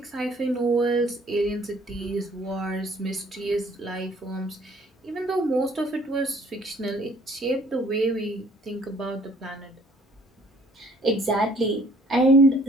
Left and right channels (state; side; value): normal; both; correlation 0.58